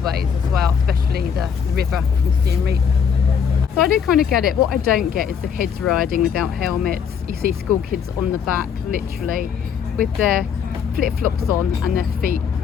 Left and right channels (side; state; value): right; quieter; 7.2 dB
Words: as well, especially the river from Siem Reap. So I do kind of get it. What I don't get is the kids riding without helmets. You see school kids on the back, literally, with their flip-flops on and their feet